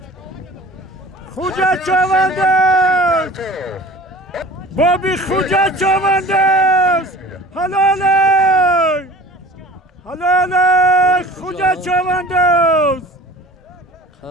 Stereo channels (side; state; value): both; normal; correlation 0.42